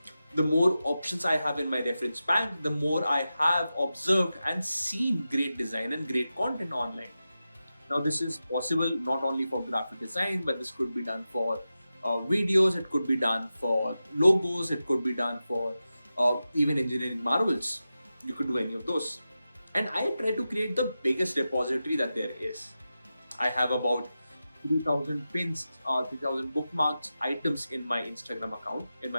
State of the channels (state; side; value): inverted; both; correlation -0.92